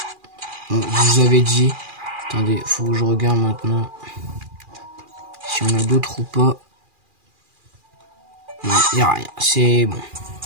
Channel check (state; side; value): late; left; 2.4 ms